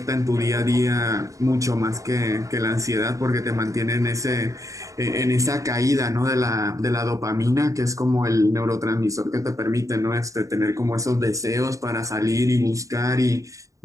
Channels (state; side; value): late; left; 0.16 ms